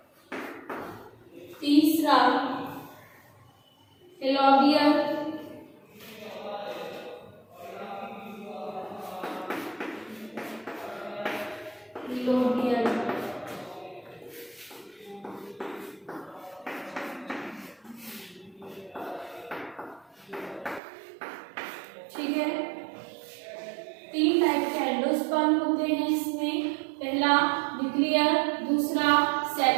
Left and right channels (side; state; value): left; drops out; at 20.8 s